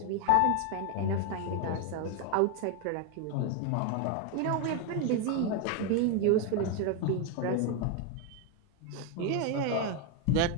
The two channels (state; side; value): different; both; correlation 0.01